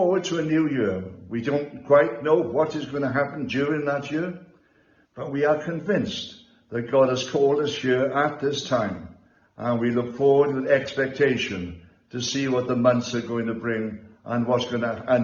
to a new year. We don't quite know what is going to happen during that year, but we are convinced that God has called us here at this time, and we look forward with expectation to see what the months are going to bring and what's going to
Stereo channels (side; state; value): both; identical; correlation 1.00